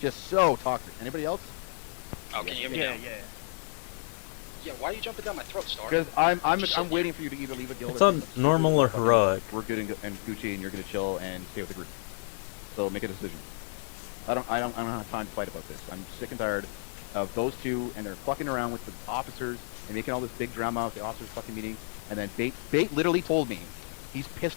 so toxic. Anybody else? Oh, can you hear me Yeah, now? yeah. Yeah, why are you jumping down my throat, Star? Because I'm waiting for you to either leave a guild. it's or on normal or heroic. We're good and Gucci, and you're gonna chill and stay with the group. So make a decision. I don't have time to fight about this. I'm sick and tired of those two, and they're fucking around with the officers and making all this big drama at the officers fucking meeting. And then Bait literally told me he's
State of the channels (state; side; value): silent; right; digital silence